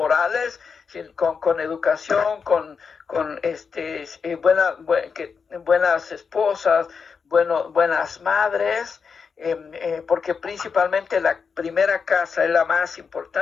sino con educación, con buenas esposas, buenas madres, porque principalmente la primera casa es la más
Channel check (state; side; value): quieter; right; 5.8 dB